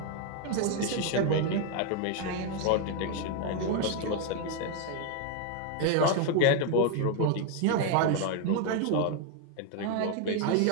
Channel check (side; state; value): both; different; correlation 0.01